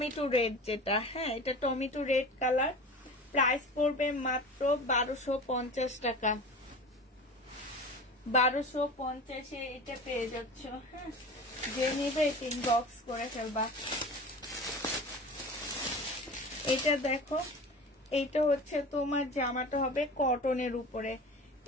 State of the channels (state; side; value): normal; both; correlation 0.35